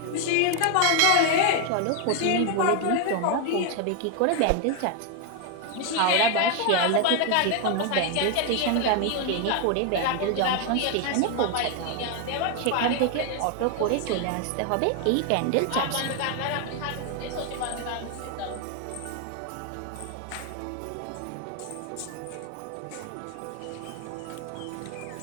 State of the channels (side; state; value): both; different; correlation 0.01